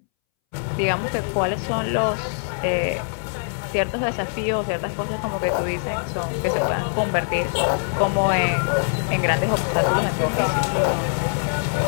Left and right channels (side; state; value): right; silent; 63 dB below the other